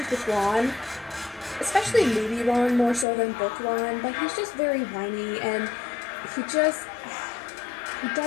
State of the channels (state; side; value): drops out; right; at 3.1 s